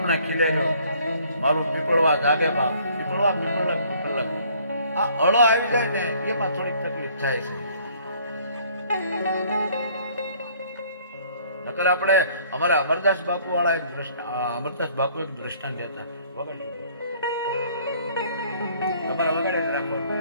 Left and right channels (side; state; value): both; inverted; correlation -0.59